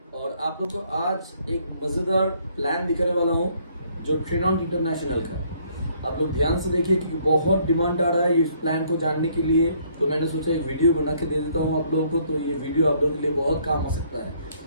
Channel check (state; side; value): inverted; both; correlation -0.65